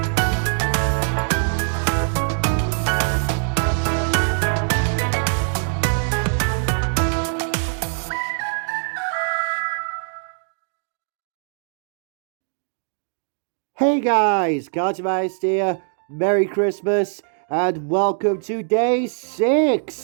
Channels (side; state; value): left; silent; digital silence